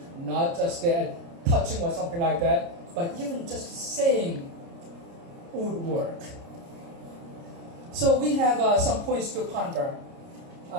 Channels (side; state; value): left; late; 29 ms